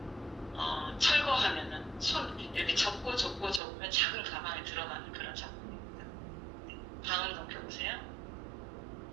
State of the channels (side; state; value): left; drops out; at 3.6 s